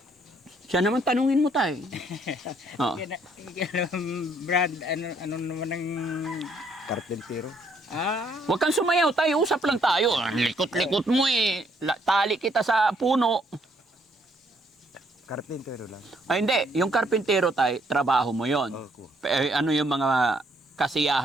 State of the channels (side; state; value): both; normal; correlation 0.68